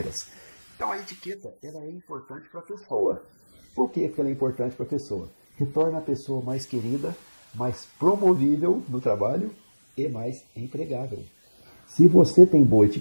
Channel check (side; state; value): both; inverted; correlation -1.00